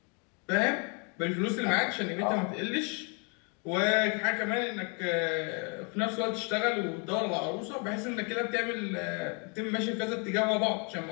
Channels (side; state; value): right; quieter; 35.3 dB